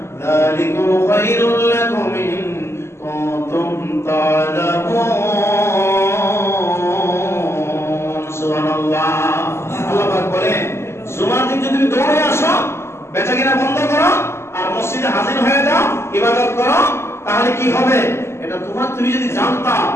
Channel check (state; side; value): late; right; 0.13 ms